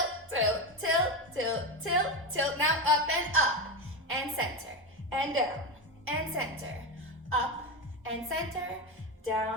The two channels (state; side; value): normal; both; correlation 0.15